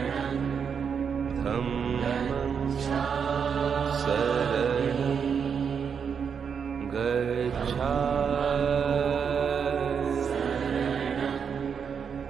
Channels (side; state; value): left; quieter; 6.8 dB